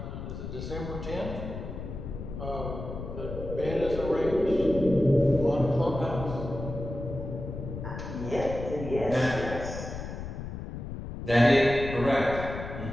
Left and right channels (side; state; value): left; noise; rumble, 8 dB below the sound